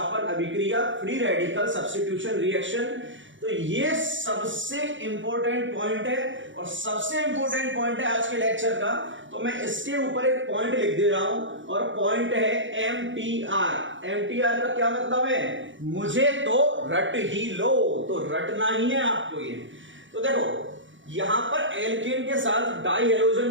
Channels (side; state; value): left; late; 0.55 ms